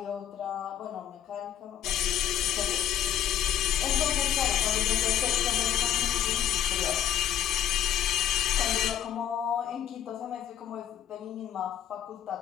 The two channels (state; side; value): quieter; right; 10.7 dB